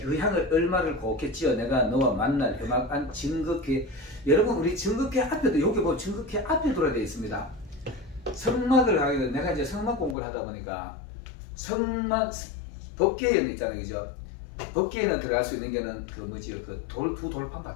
향을 얼마를 곱겠지요. 내가 너와 만날 음악한 증거궤. 여러분 우리 증거궤 앞에도 여기 보면 증거궤 앞에 들어야 되어 있습니다. 성막을 하게 되면 내가 이제 성막 공부를 하다 보니까 성막 법궤에는 있잖아요, 그죠? 법궤에는 들어갈 수 있는 게는 그 뭐지 그 두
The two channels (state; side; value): drops out; right; at 10.2 s